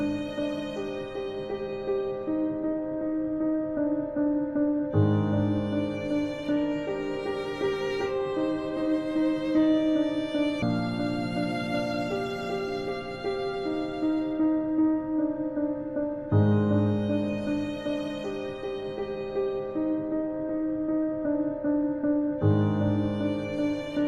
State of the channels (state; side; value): identical; both; correlation 1.00